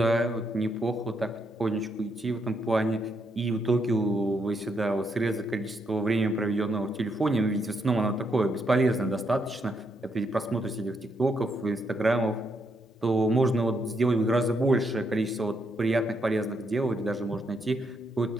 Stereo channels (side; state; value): both; normal; correlation 0.78